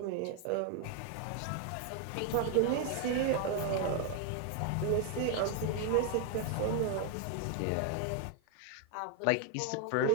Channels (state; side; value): different; both; correlation 0.01